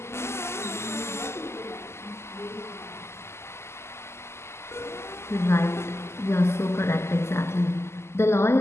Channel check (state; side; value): late; right; 0.13 ms